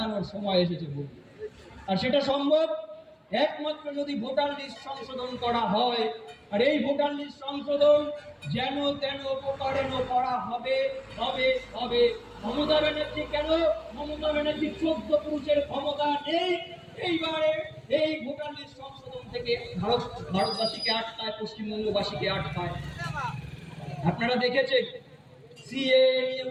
সময় এসেছে বলে। আর সেটা সম্ভব একমাত্র যদি ভোটার লিস্ট সংশোধন করা হয়। আর এই ভোটার লিস্ট সংশোধন যেন তেন প্রকারেণ করা হবে হবে হবে। মমতা ব্যানার্জি কেন? মমতা ব্যানার্জি 14 পুরুষের ক্ষমতা নেই। এইবারে এই ভোটার লিস্ট সংশোধন থেকে ভারতবাসীকে আটকায়, পশ্চিমবঙ্গবাসীকে আটকায়। আপনারা দেখেছেন সিএ নিয়ে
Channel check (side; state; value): both; identical; correlation 1.00